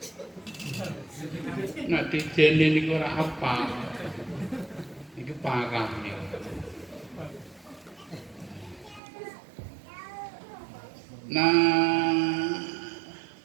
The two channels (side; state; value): left; drops out; at 9.0 s